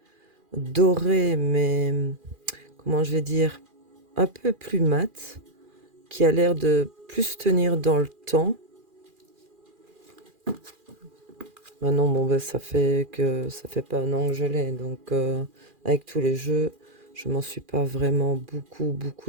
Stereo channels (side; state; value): left; late; 2.4 ms